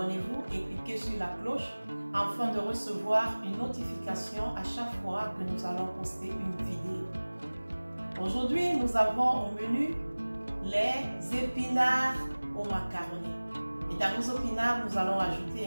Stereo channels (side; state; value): both; inverted; correlation -1.00